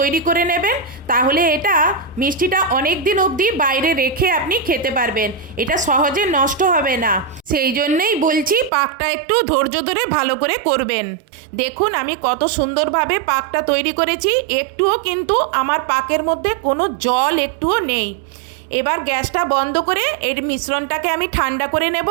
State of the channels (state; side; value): drops out; left; at 8.7 s